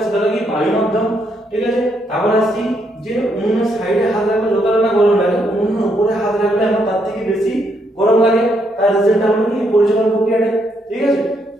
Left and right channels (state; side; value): normal; both; correlation 0.75